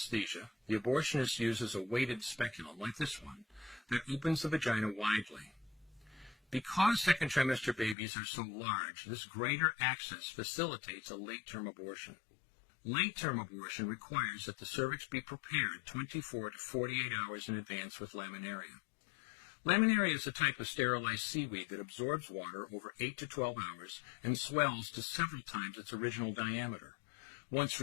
the abortionist uses a weighted speculum, like this one, that opens the vagina widely. Because second trimester babies are so large, this greater access facilitates a late-term abortion. Late-term abortion requires that the cervix be prepared 24 to 48 hours in advance with laminaria. Laminaria is a type of sterilized seaweed that absorbs water over 8 to 12 hours and swells to several times its original diameter. Once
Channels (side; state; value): right; drops out; at 8.0 s